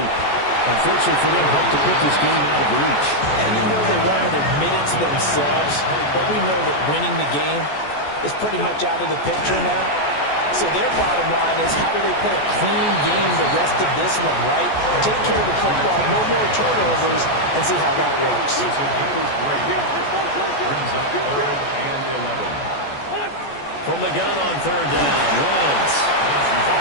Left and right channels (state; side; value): late; right; 14 ms